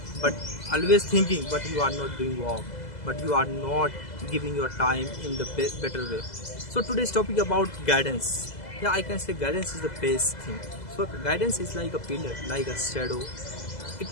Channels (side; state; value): right; late; 2.0 ms